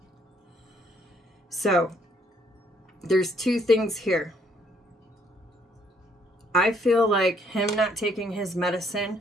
So there's 2 things here. I feel like him not taking his medicine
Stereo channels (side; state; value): both; normal; correlation 0.67